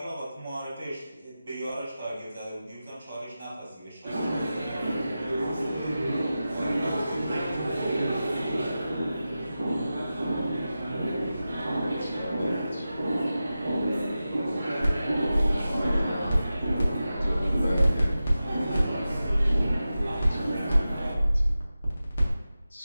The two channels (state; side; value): inverted; both; correlation -0.94